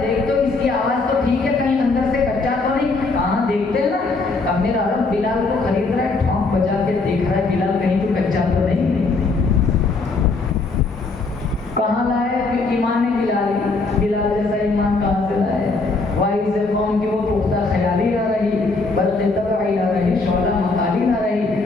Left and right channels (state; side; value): quieter; right; 3.7 dB